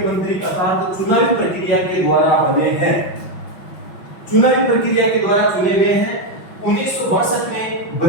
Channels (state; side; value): late; right; 5.7 ms